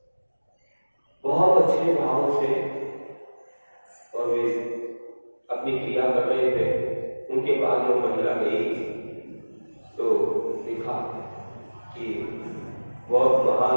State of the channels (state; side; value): inverted; both; correlation -1.00